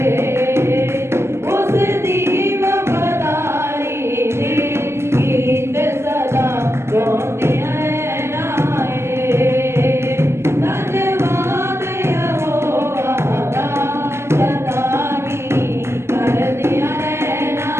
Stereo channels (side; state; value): left; late; 0.13 ms